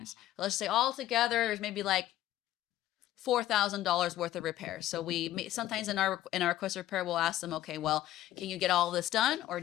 Let's say all together there's maybe like $4,000 worth of repairs. So sometimes in our request repair, we'll ask them, okay, well, can you get all this done, or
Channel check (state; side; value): quieter; right; 13.8 dB